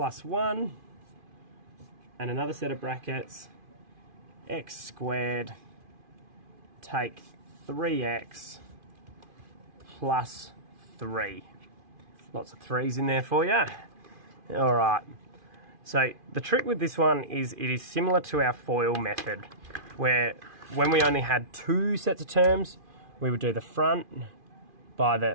1 and another set of brackets x squared take 3x plus 3. Lots of 3's in there for you. Alright, so the trick with this one is it is similar to our FOIL method, where when we only had two sets of terms, we would do the front by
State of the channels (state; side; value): late; left; 2.5 ms